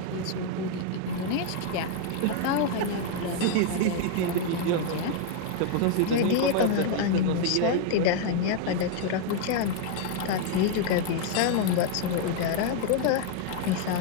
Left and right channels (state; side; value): different; both; correlation 0.00